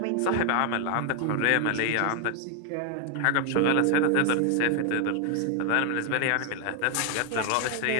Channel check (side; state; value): both; different; correlation 0.00